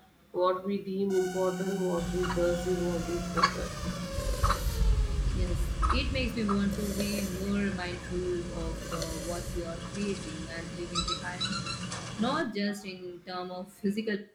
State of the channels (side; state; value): both; identical; correlation 1.00